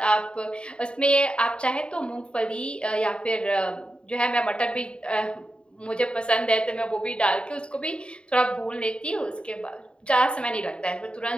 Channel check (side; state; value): right; late; 0.053 ms